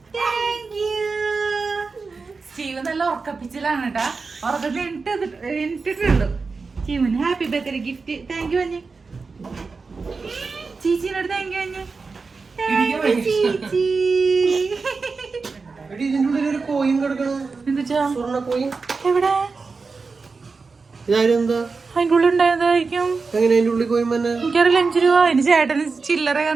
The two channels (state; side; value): quieter; left; 4.4 dB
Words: Steve നല്ല ഉറക്കപ്പിച്ചിലാണ് കേട്ടാ. ഉറക്കത്തിൽ എണിട്ടിട്ടുള്ളൂ. സ്റ്റീവിന് happy birthday gift. Thank you അഞ്ഞ്. ചീച്ചിനോട് താങ്ക് യു അഞ്ഞ്. ചേച്ചി എവിടെ? അതിന്റെ ഉള്ളിൽ ഉണ്ടായതായിരിക്കും. എനിക്കറിയില്ല. 5 രൂപ എന്റെ ചേട്ടന് ചില്ലറ